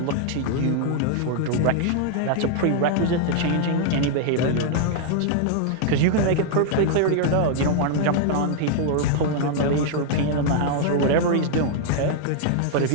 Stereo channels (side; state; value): both; different; correlation 0.00